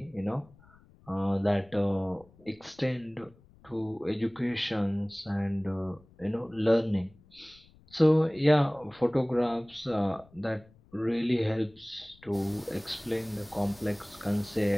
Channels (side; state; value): left; noise; rumble, 27 dB below the sound